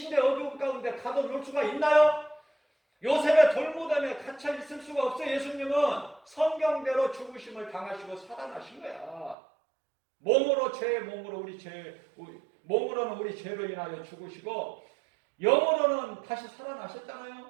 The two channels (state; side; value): drops out; left; at 9.3 s